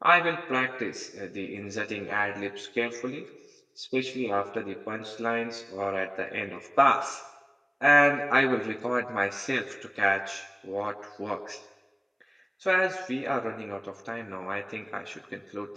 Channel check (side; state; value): both; identical; correlation 1.00